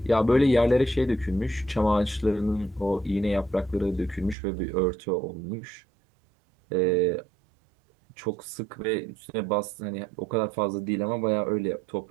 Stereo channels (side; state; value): left; drops out; at 4.4 s